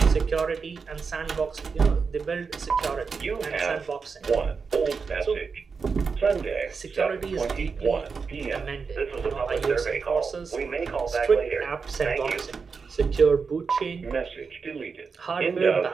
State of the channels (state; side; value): quieter; left; 5.2 dB